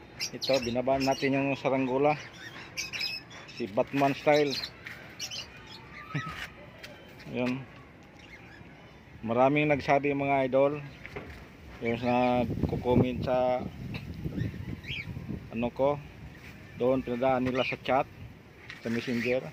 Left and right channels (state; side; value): identical; both; correlation 1.00